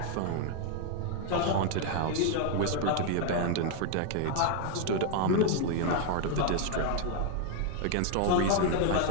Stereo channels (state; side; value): different; both; correlation 0.00